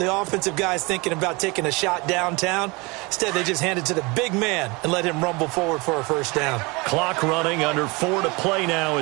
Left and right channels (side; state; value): left; quieter; 26.2 dB